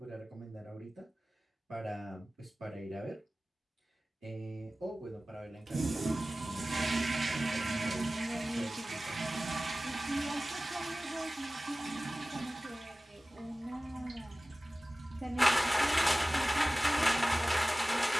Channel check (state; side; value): normal; both; correlation 0.97